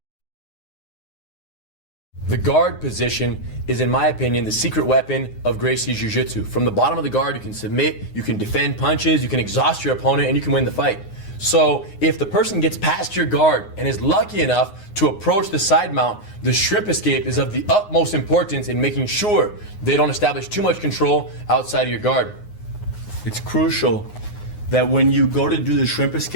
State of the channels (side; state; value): right; late; 9.6 ms